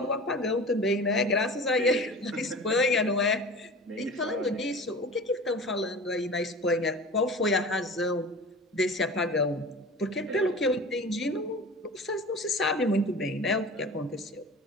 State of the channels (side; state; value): both; normal; correlation 0.37